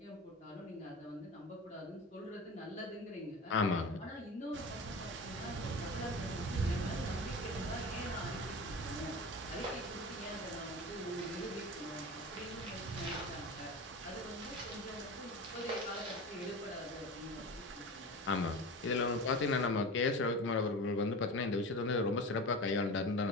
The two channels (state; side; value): normal; both; correlation 0.30